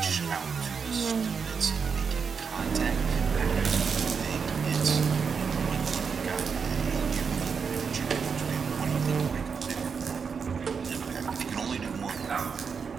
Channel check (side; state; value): left; quieter; 6.0 dB